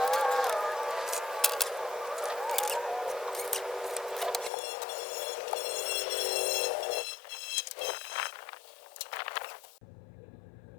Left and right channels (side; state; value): right; drops out; at 4.5 s